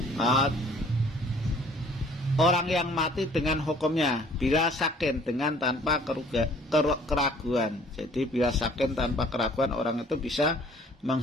orang yang mati dengan hukumnya, bila sakin, dengan tanpa keraguan. Jadi bila sakin tanpa keraguan, orang itu bisa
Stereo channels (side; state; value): both; normal; correlation 0.55